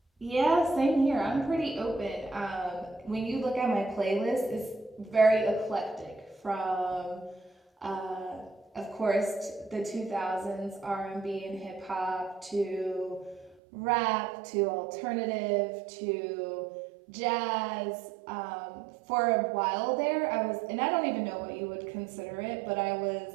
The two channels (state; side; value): drops out; left; at 13.6 s